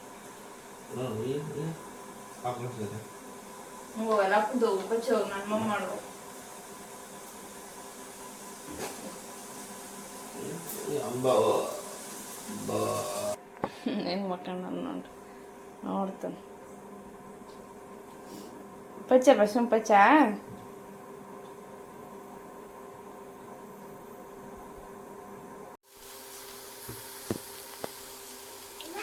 Ako sila. ಹೋಗಲ್ಲ ಹಾಕೊಂಡು ಹೋಗು ಬಚ್ಚಿ ಹೋಗಿ ನಾನು ಮಮ್ಮ ಮಾಡು ಹೆಂಗ್ ಮಕ್ಕಳು ನಾನು ನೋಡ್ತಾನೆ ಪಚ್ಚ ಬಸ್ಸು ಪಚ್ಚ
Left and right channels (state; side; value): identical; both; correlation 1.00